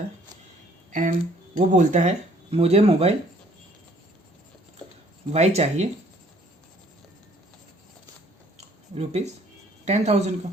एंड वो बोलता है मुझे मोबाइल वाई चाहिए ₹10,000 का।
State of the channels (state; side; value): normal; both; correlation 0.60